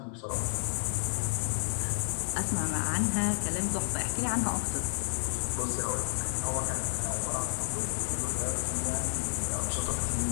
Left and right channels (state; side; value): silent; right; digital silence